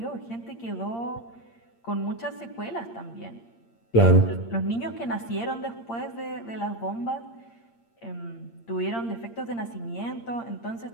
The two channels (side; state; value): right; late; 8.7 ms